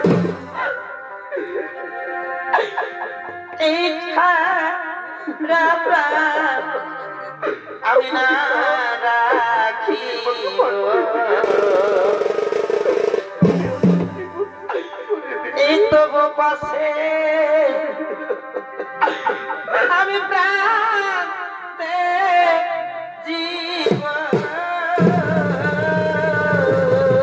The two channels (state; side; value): identical; both; correlation 1.00